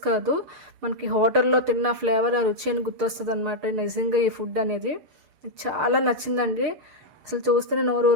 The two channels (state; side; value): late; left; 6.6 ms